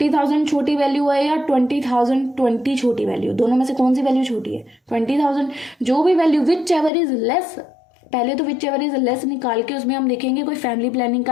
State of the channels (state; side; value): drops out; right; at 6.9 s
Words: छोटी वैल्यू है या 20,020 छोटी वैल्यू, दोनों में से कौन सी वैल्यू छोटी है 20,000। जो भी value which ever is less, पहले तो विच एवर इज लेस निकाल के उसमें हम देखेंगे कोई फैमिली प्लानिंग